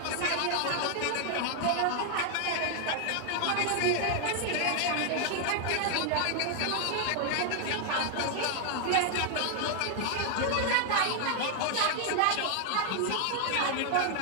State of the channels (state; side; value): different; both; correlation 0.00